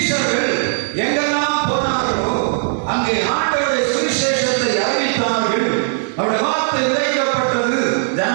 எங்கெல்லாம் போனார்களோ அங்கே ஆண்டவருடைய சுவிசேஷத்தை அறிவித்தார்கள். அவருடைய வார்த்தை விதைக்கப்பட்டது.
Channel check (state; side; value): silent; left; 62 dB below the other